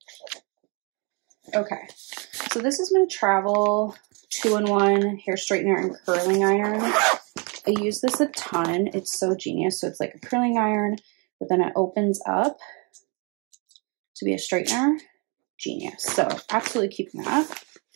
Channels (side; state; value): left; quieter; 32.6 dB